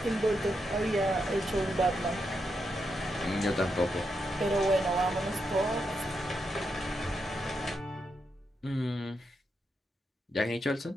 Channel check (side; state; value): both; normal; correlation 0.83